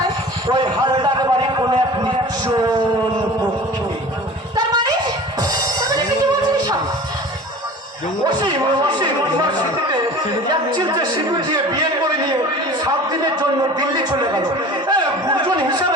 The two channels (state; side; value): normal; both; correlation 0.40